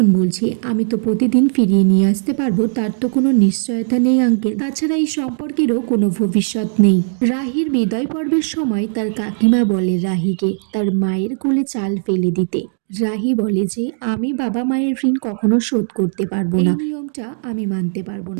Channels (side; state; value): left; silent; digital silence